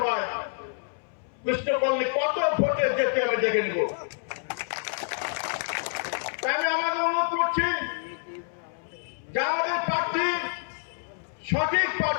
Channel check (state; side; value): silent; right; 60 dB below the other